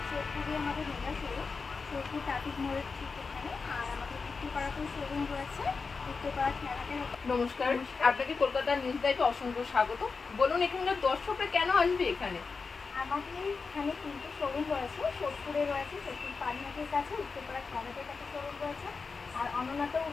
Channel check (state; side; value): quieter; right; 4.7 dB